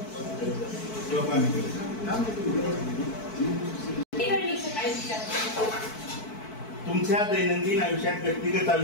तुमच्या दैनंदिन आयुष्यात, व्यक्तिगत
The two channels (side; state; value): right; late; 4.6 ms